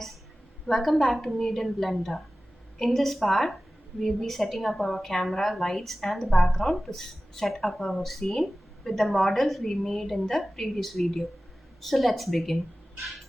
welcome back to Made in Blender. In this part, we'll be setting up our camera, lights and the background to set up our scene with the models we made in the previous video. So let's begin.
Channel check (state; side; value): normal; both; correlation 0.96